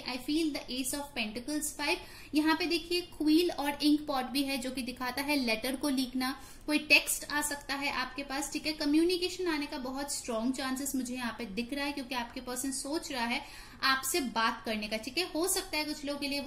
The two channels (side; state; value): both; identical; correlation 1.00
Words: feel the S of pentacles 5। यहाँ पे देखिए क्वील और इंक पॉट भी है जो कि दिखाता है लेटर को लिखना, कोई टेक्स्ट आ सकता है आपके पास, ठीक है। कम्युनिकेशन आने का बहुत स्ट्रॉन्ग चांसेस मुझे यहाँ पे दिख रहा है, क्योंकि आपके पर्सन सोच रहा है आपसे बात करने का, ठीक है। हो सकता है कुछ लोगों के लिए